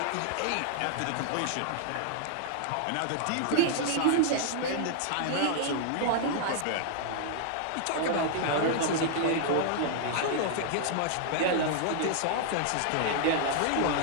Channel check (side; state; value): both; different; correlation -0.01